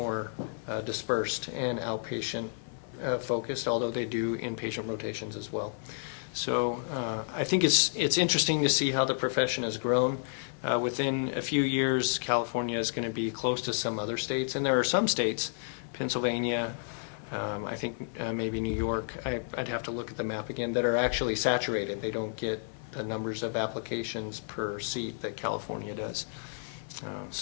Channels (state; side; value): silent; right; 55 dB below the other